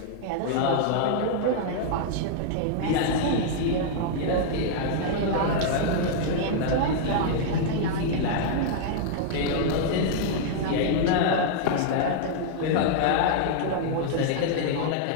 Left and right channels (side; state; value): both; different; correlation -0.01